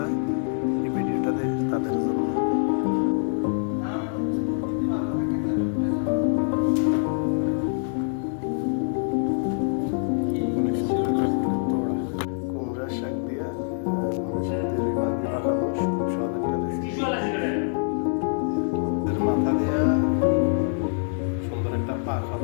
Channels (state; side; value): silent; right; 62 dB below the other